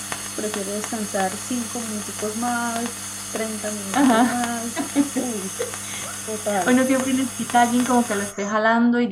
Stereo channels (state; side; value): identical; both; correlation 1.00